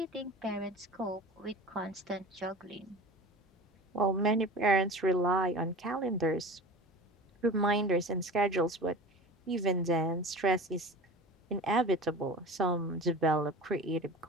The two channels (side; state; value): both; normal; correlation 0.35